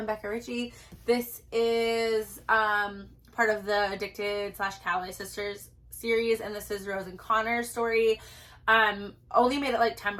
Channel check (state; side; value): identical; both; correlation 1.00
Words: Becker Ritchie. This is part of the Addicted/Calloway Sisters series, and this is Rose and Connor's story. Only made it